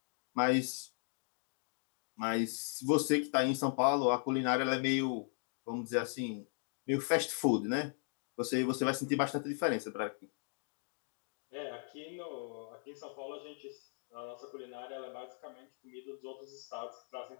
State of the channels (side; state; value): right; silent; 53 dB below the other